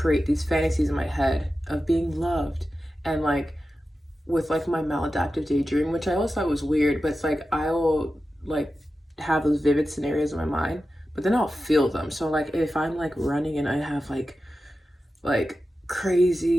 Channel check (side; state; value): both; normal; correlation 0.92